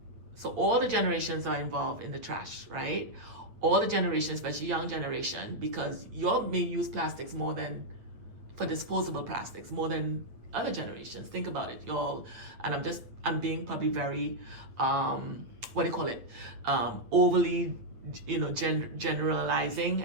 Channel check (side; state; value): left; late; 9.1 ms